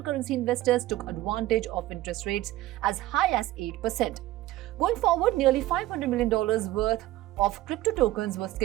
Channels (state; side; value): quieter; left; 16.1 dB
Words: investors took advantage of interest rates as high as 8%. Going forward, nearly $500 million worth of crypto tokens were